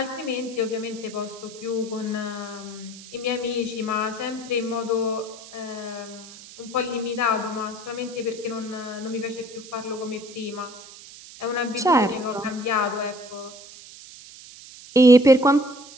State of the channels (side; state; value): right; noise; hiss, 17 dB below the sound